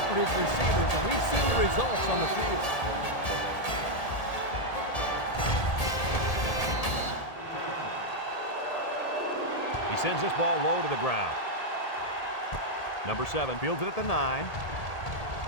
his receivers, and we've seen the results on the field. He sends this ball low to the ground. Number 7 fields it at the 9.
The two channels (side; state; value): right; late; 1.8 ms